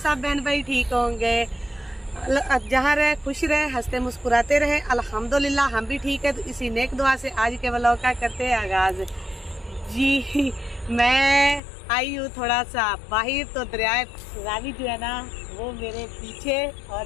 बहन भाई ठीक होंगे, जहाँ रहे खुश रहे, हंसते मुस्कुराते रहे। अल्हम्दुलिल्लाह हम भी ठीक है। तो इसी नेक दुआ से आज के व्लॉग का करते हैं आगाज। जी मैं आई हूँ थोड़ा सा बाहर, तो दरिया रावी जो है ना वो मेरे पीछे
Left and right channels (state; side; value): drops out; right; at 11.6 s